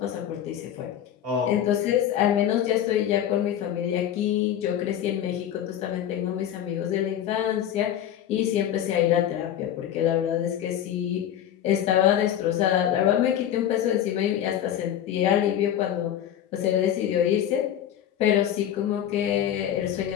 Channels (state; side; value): quieter; right; 10.6 dB